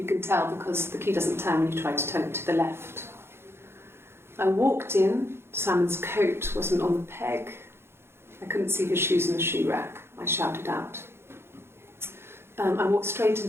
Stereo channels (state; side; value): late; left; 0.12 ms